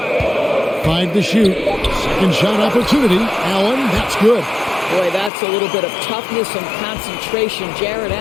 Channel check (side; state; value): right; drops out; at 5.3 s